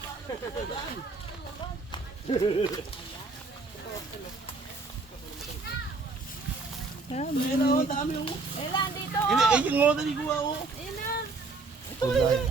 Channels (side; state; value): left; quieter; 3.8 dB